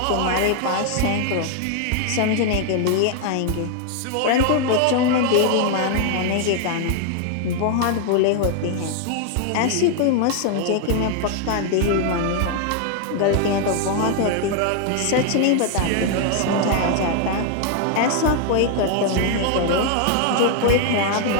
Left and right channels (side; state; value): both; different; correlation 0.00